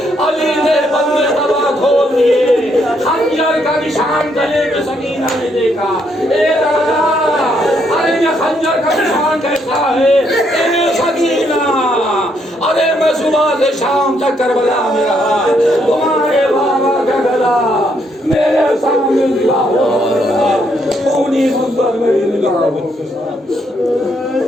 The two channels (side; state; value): both; normal; correlation 0.74